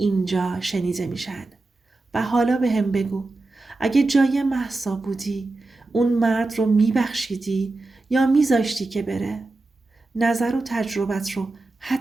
شنیده میشن. و حالا به هم بگو، اگه جای مهسا بودی اون مرد رو میبخشیدی یا میذاشتی که بره؟ نظر و تجربت رو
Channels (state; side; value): quieter; left; 3.1 dB